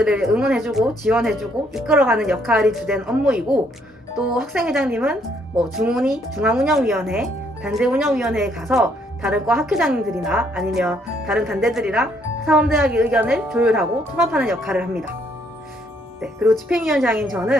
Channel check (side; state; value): both; normal; correlation 0.69